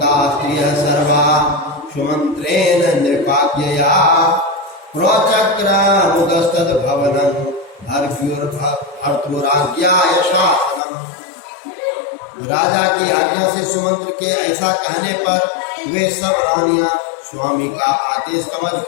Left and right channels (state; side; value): drops out; right; at 10.8 s